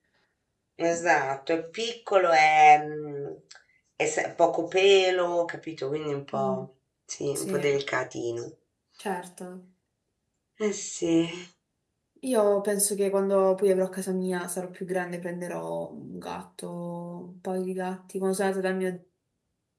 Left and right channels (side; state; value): both; identical; correlation 1.00